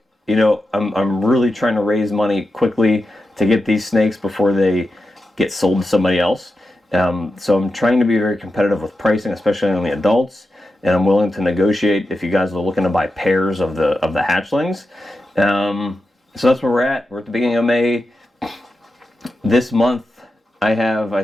I'm really trying to raise money quickly to get these snakes before they get sold to somebody else. So I'm trying to be very competitive with pricing, especially on the adults, and I'm willing to negotiate if you guys are looking to buy pairs of the hatchlings. So that's where we're at. We're at the beginning of May. This month I have, I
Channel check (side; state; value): both; normal; correlation 0.90